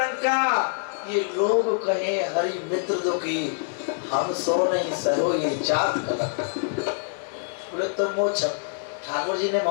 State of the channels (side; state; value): right; silent; digital silence